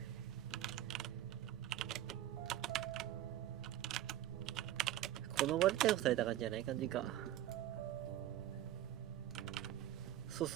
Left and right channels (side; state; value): left; quieter; 12.7 dB